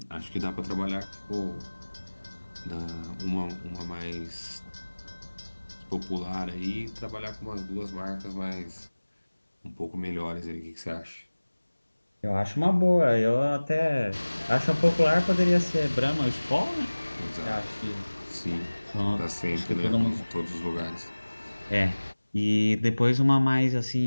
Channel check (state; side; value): inverted; both; correlation -1.00